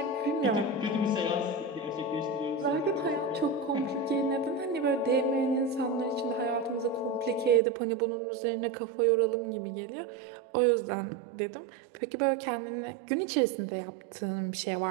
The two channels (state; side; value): drops out; left; at 7.6 s